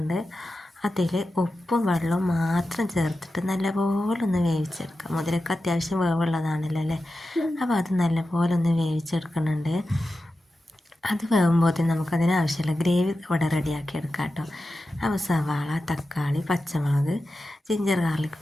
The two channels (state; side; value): normal; both; correlation 0.92